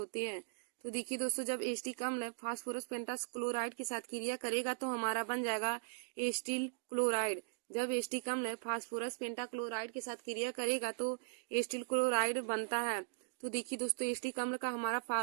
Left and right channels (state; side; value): silent; left; digital silence